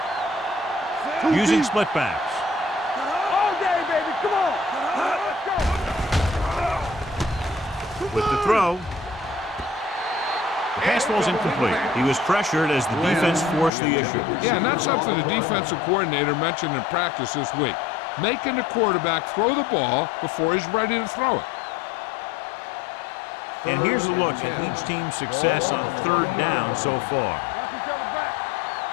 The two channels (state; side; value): drops out; right; at 13.7 s